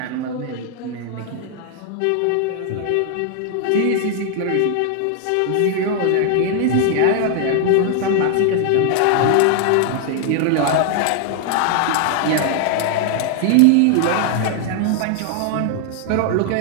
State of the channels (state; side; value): different; both; correlation 0.00